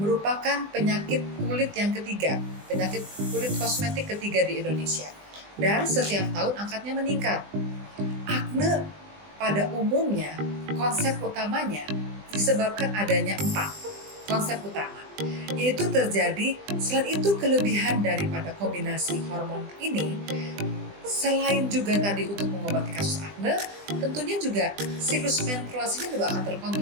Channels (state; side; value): late; left; 20 ms